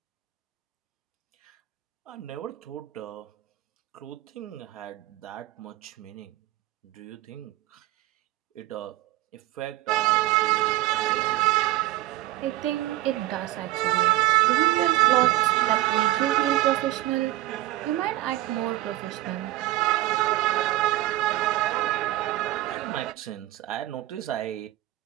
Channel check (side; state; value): left; quieter; 15.8 dB